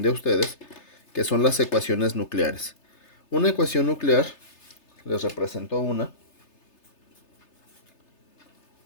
a ustedes, que son las ecuaciones nucleares. Una ecuación nuclear, les represento una.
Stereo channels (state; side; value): late; right; 3.3 ms